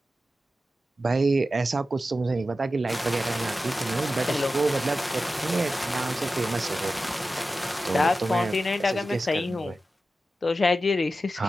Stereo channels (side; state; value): both; normal; correlation 0.93